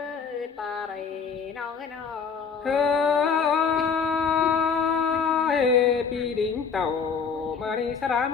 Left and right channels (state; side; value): quieter; right; 6.0 dB